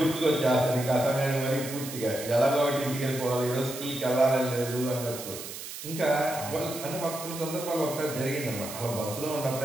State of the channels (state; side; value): noise; right; hiss, 10 dB below the sound